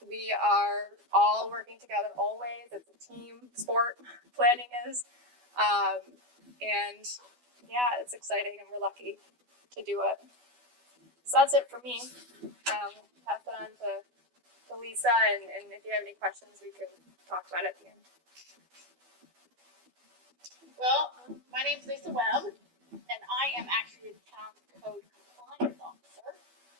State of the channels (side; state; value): left; late; 12 ms